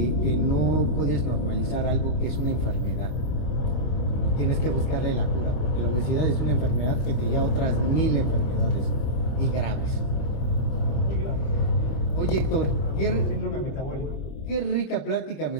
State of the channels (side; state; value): right; late; 25 ms